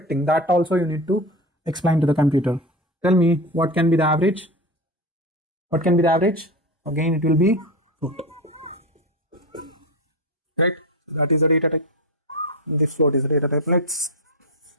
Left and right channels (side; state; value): both; normal; correlation 0.22